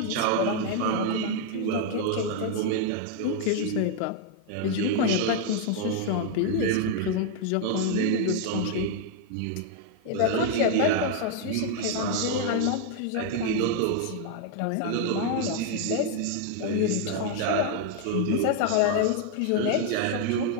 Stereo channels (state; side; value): different; both; correlation 0.00